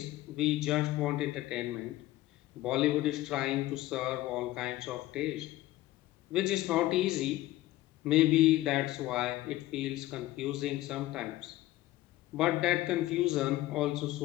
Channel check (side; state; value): right; quieter; 16.4 dB